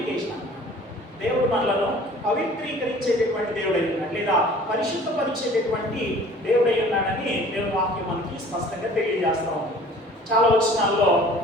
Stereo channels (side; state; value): both; normal; correlation 0.49